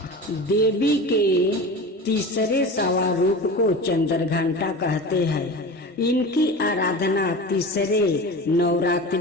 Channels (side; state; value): both; normal; correlation 0.32